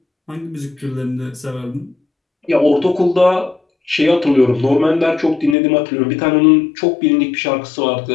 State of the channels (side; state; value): right; drops out; at 5.6 s